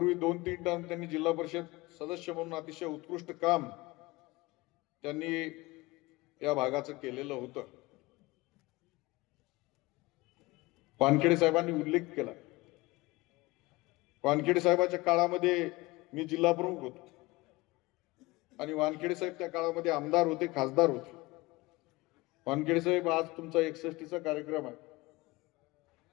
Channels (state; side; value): quieter; right; 21.8 dB